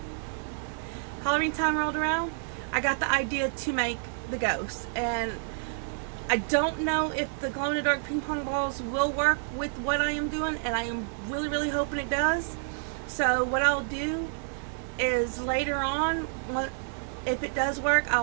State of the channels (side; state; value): left; silent; digital silence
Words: time rolled around, I got the idea to make the ghost. And I don't know if the glow-in-the-dark ping pong balls will work with what I am doing, and I am really hoping it does. So what I'll do is later on, if it does work,